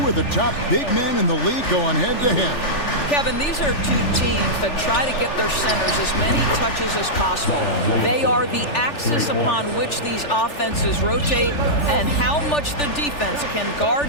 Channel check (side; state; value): right; late; 3.4 ms